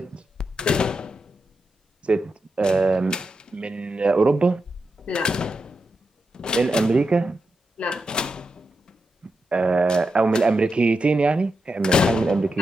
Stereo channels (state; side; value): normal; both; correlation 0.87